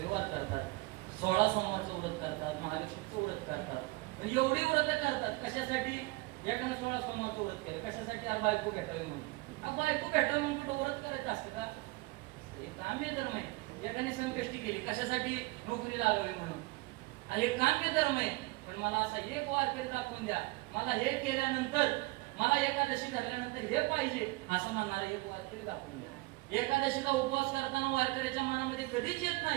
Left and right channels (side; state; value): left; quieter; 22.7 dB